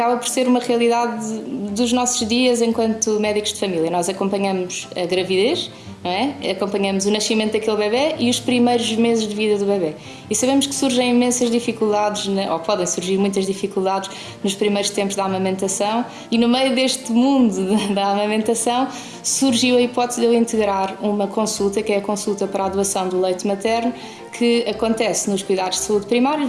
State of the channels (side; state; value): both; identical; correlation 1.00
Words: por ser uma realidade dos nossos dias enquanto médicos de família. Nós acompanhamos a gravidez, não é? Acompanhamos o nascimento daquele bebê e os primeiros meses de vida do bebê. E sabemos que surgem imensas dificuldades, ou podem surgir muitas dificuldades nos primeiros tempos da amamentação e no meio deste mundo da amamentação surgiu a hipótese de eu integrar uma consulta, que é a consulta para a doação do leite materno, que acontece nos cuidados de saúde